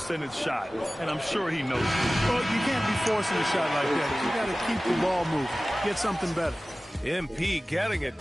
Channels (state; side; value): normal; both; correlation 0.97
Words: shot, and I'm sure he knows it. Well, you can't be forcing a shot like that. You got to keep the ball moving. Get something better. MP getting it.